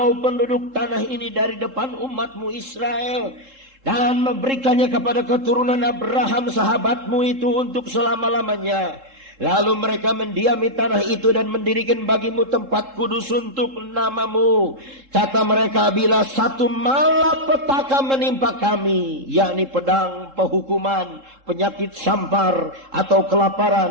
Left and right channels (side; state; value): left; late; 3.7 ms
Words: penduduk tanah ini dari depan umat-Mu Israel, dan memberikannya kepada keturunan Abraham sahabat-Mu itu untuk selama-lamanya? Lalu mereka mendiami tanah itu dan mendirikan bagi-Mu tempat kudus untuk nama-Mu. Kata mereka, bila satu malapetaka menimpa kami, yakni pedang, penghukuman, penyakit sampar, atau